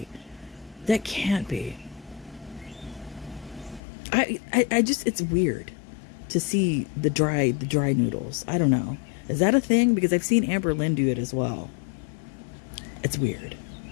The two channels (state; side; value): drops out; right; at 3.8 s